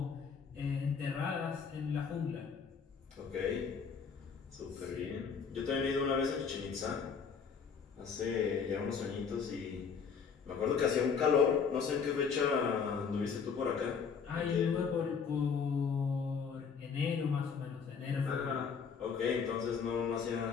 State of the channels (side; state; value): right; quieter; 6.1 dB